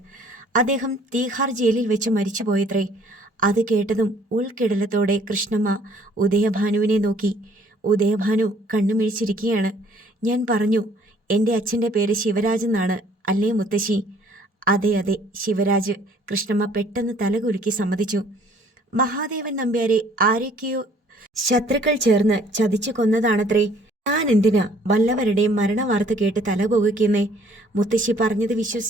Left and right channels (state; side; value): normal; both; correlation 0.58